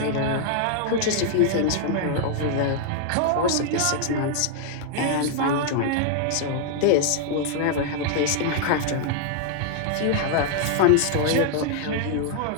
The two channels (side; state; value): both; different; correlation 0.00